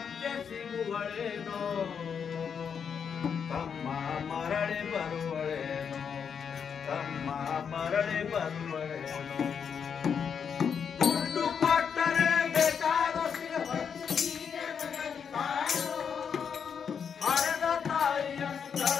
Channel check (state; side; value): quieter; right; 7.0 dB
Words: ಸಿಗುವಳೇನೋ ತಮ್ಮ ಮರಳಿ ಬರುವಳೇನೋ ತಮ್ಮ ಮರಳಿ ಬರುವಳೇನೋ ದುಡ್ಡು ಕೊಟ್ಟರೆ ಬೇಕಾದ ಹಡೆದ ತಾಯಿಯನ್ನು